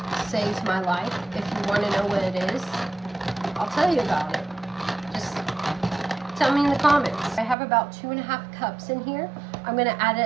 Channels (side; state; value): left; drops out; at 7.6 s